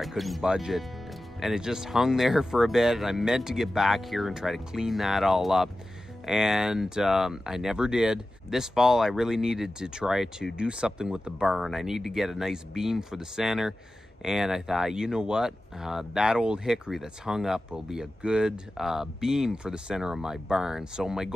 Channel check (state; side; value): normal; both; correlation 0.94